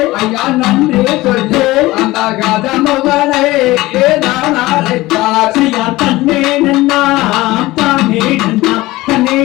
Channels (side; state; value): right; quieter; 18.9 dB